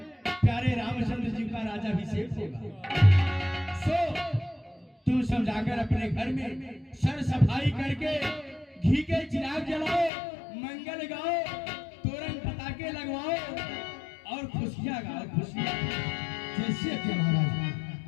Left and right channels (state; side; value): drops out; right; at 10.1 s